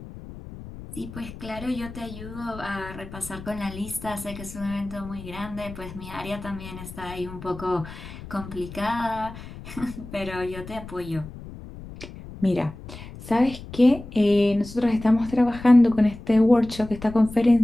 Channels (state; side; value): noise; left; rumble, 14 dB below the sound